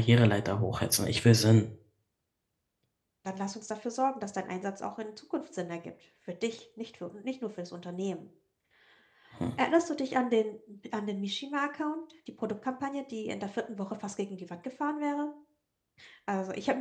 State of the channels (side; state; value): both; identical; correlation 1.00